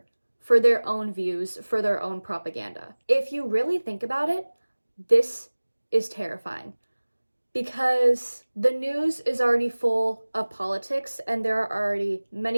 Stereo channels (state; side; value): inverted; both; correlation -1.00